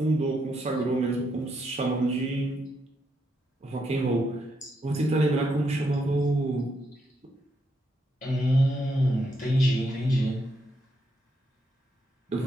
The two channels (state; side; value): normal; both; correlation 0.79